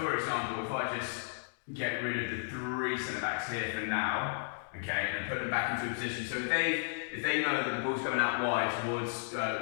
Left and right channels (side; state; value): right; silent; digital silence